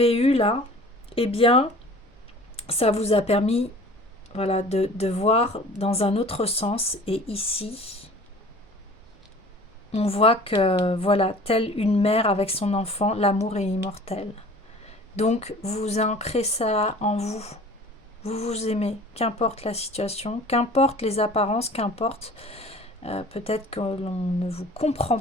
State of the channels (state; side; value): normal; both; correlation 0.45